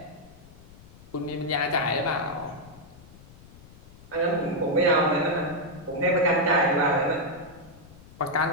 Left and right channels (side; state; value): left; noise; rumble, 21 dB below the sound